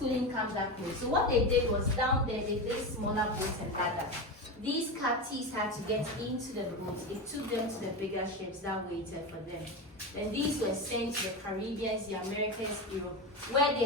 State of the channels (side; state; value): both; normal; correlation 0.20